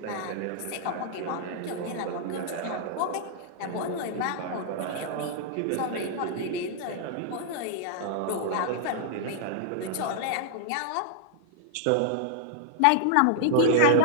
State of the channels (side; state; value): both; different; correlation -0.01